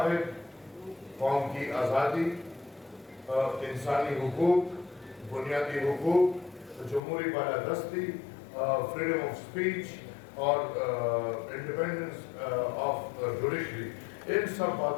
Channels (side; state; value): right; drops out; at 7.0 s